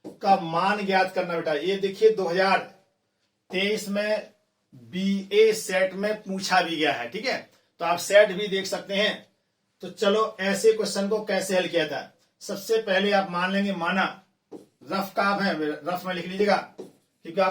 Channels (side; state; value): both; identical; correlation 1.00